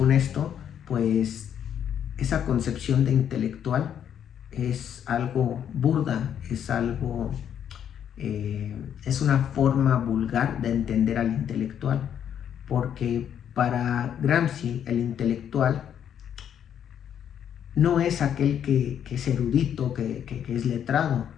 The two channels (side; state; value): right; quieter; 9.2 dB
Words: esto, pues esa concepción de intelectual es algo burda, es una forma vulgar de entender al intelectual, porque para Gramsci el intelectual no es aquel que es erudito, que es letrado,